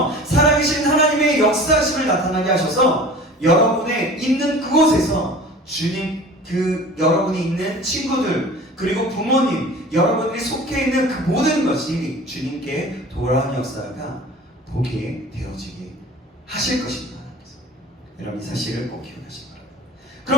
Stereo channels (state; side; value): normal; both; correlation 0.41